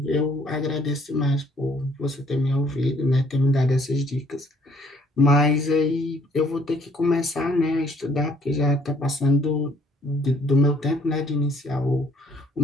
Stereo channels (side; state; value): both; normal; correlation 0.62